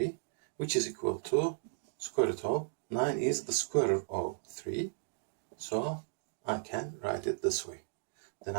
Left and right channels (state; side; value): silent; left; digital silence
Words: which is equal to square root of 9 is the square root of 3, so I can write it this way. Then